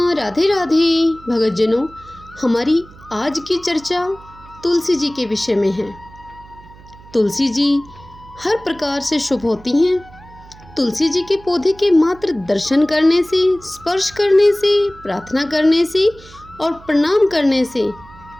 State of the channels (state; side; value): noise; right; hum, 22 dB below the sound